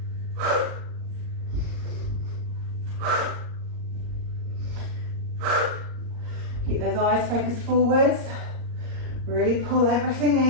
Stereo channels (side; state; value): left; late; 38 ms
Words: Keep those eyes focused forwards. Really pull everything